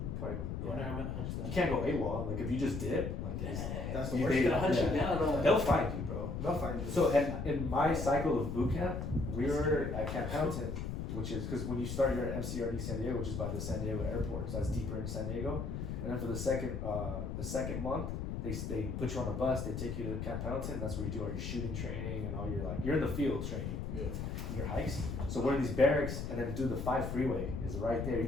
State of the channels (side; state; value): left; noise; rumble, 4 dB below the sound